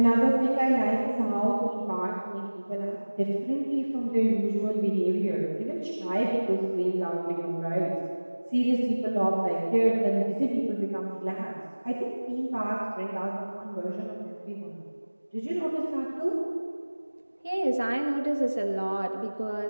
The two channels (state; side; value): inverted; both; correlation -1.00